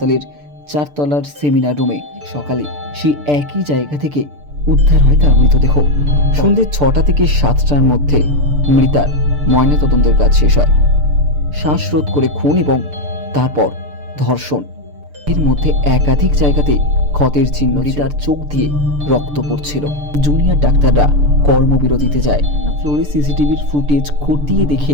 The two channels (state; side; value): late; left; 6.8 ms